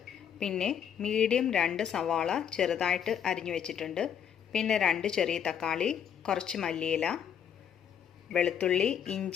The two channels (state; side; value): quieter; right; 8.6 dB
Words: പിന്നെ മീഡിയം 2 സവാള ചെറുതായിട്ട് അരിഞ്ഞു വെച്ചിട്ടുണ്ട്. പിന്നെ 2 ചെറിയ തക്കാളി, കുറച്ച് മല്ലിയില, വെളുത്തുള്ളി,